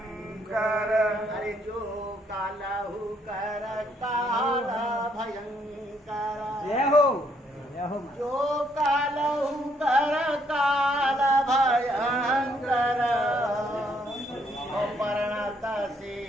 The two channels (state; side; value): normal; both; correlation 0.71